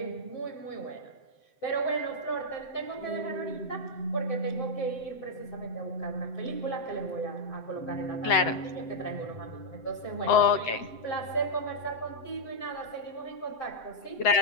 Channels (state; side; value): late; right; 7.8 ms